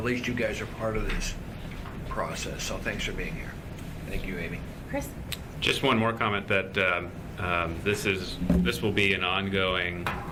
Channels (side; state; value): both; identical; correlation 1.00